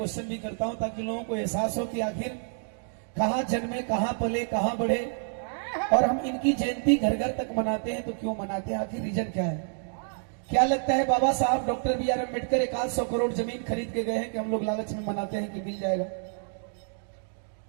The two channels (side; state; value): left; silent; 59 dB below the other